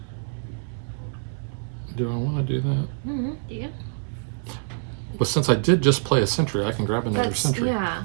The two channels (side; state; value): left; silent; digital silence